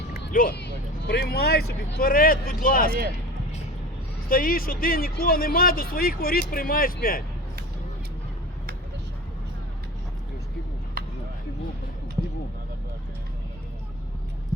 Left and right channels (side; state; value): both; normal; correlation 0.36